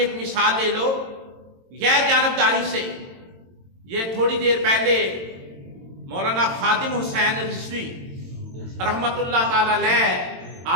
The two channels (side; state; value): left; late; 22 ms